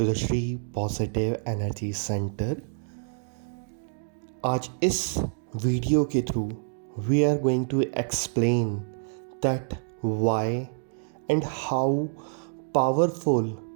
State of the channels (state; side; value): silent; left; digital silence